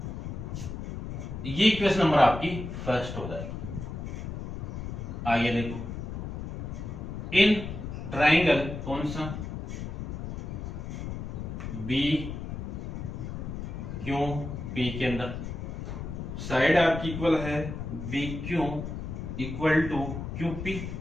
ये इक्वेशन नंबर आपकी फर्स्ट हो जाएगी। आइए देखो, इन ट्राइंगल कौन सा? बी क्यू पी के अंदर साइड आपकी इक्वल है B Q equal to Q P,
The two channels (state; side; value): noise; left; rumble, 6 dB below the sound